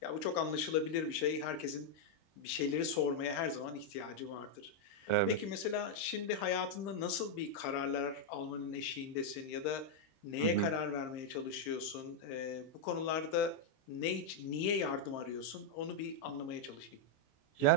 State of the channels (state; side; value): late; right; 26 ms